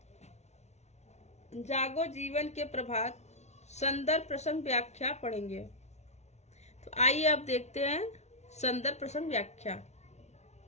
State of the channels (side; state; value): right; late; 0.32 ms